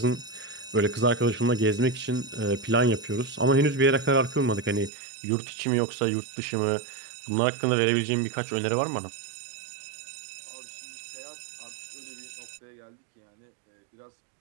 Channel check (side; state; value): left; drops out; at 4.9 s